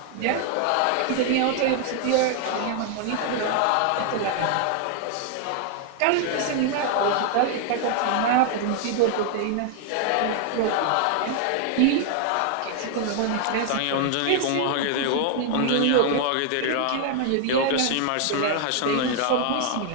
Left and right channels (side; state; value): both; different; correlation 0.00